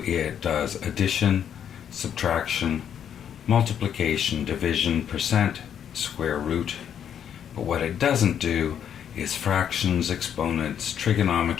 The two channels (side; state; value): right; quieter; 8.9 dB